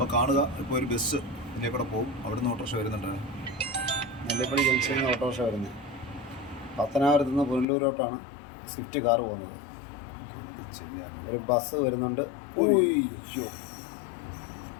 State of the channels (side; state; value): right; drops out; at 7.7 s